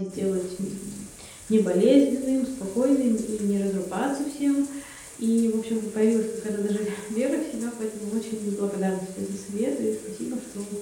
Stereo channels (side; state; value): both; identical; correlation 1.00